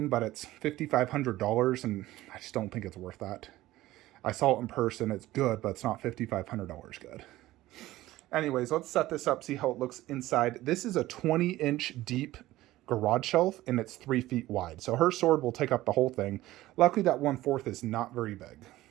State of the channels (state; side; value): quieter; left; 16.3 dB